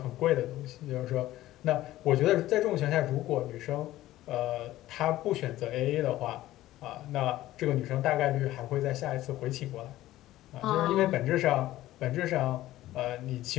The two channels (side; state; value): right; quieter; 15.3 dB